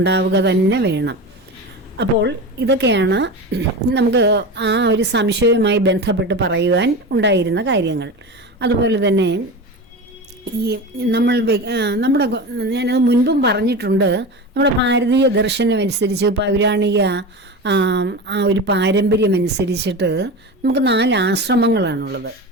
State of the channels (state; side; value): normal; both; correlation 0.27